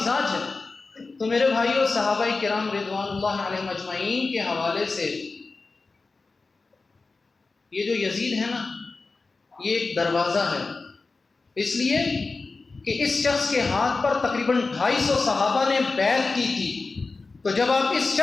ہے۔ تو میرے بھائیوں، صحابہ کرام رضوان اللہ علیہ مجمعین کے حوالے سے یہ جو یزید ہے نا، یہ ایک دروازہ ہے، اس لیے کہ اس شخص کے ہاتھ پر تقریباً 250 صحابہ نے بیعت کی تھی، تو جب آپ اس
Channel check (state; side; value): quieter; right; 3.9 dB